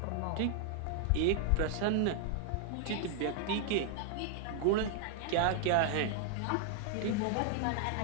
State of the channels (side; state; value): both; different; correlation 0.00